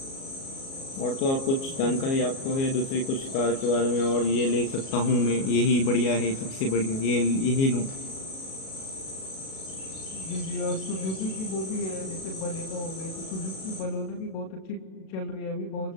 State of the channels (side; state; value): right; late; 37 ms